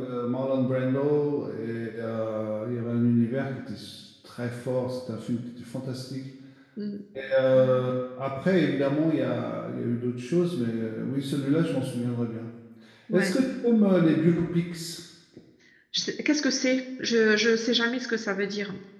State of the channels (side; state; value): both; identical; correlation 1.00